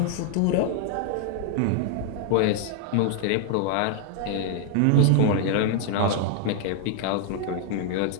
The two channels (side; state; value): both; different; correlation 0.00